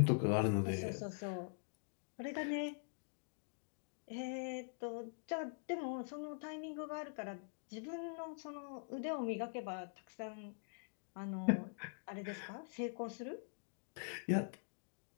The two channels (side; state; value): right; silent; digital silence